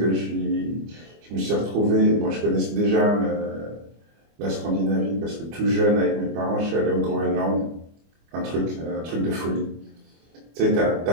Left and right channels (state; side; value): late; left; 25 ms